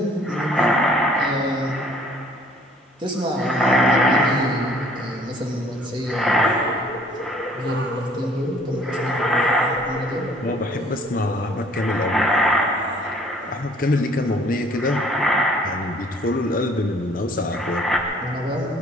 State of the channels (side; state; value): both; normal; correlation 0.57